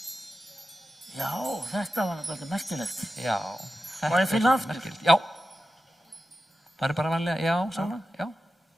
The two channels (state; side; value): normal; both; correlation 0.92